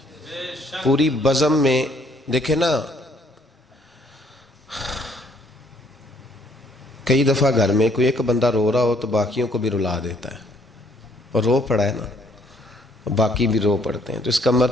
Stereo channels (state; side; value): normal; both; correlation 0.64